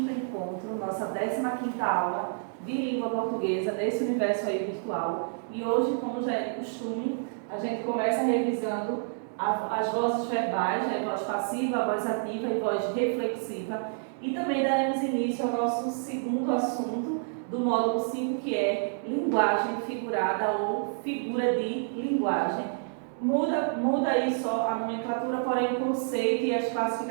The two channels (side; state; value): left; silent; digital silence